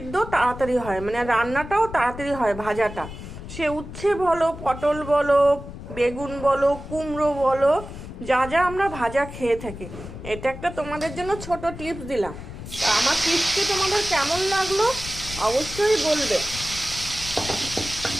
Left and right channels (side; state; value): left; noise; rumble, 12 dB below the sound